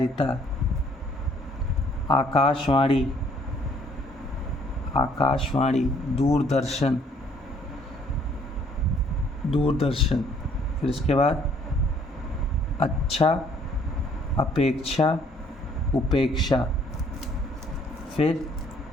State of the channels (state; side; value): normal; both; correlation 0.62